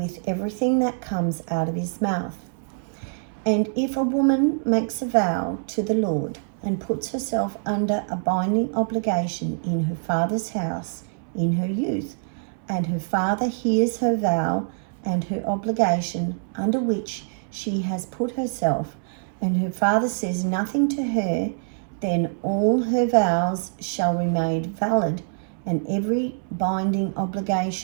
everything that comes out of his mouth. And if a woman makes a vow to the Lord and puts herself under a binding obligation in her father's house in her youth, and her father hears her vow and her obligation under which she has put herself, and her father says nothing to her, then all her vows shall remain valid, and every binding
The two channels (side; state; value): left; silent; 62 dB below the other